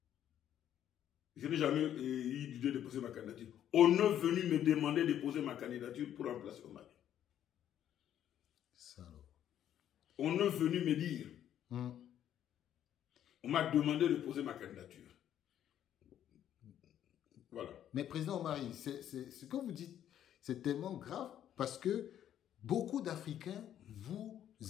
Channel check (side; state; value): right; quieter; 10.6 dB